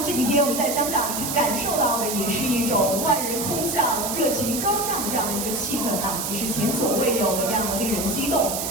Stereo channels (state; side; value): noise; right; hiss, 3 dB below the sound